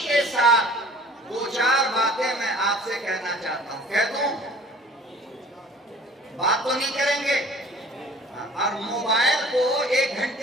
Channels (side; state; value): both; normal; correlation 0.49